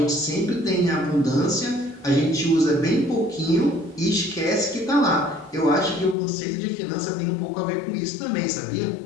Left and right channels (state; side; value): drops out; right; at 6.2 s